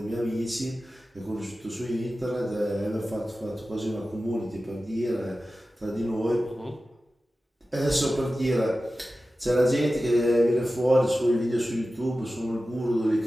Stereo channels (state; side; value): normal; both; correlation 0.94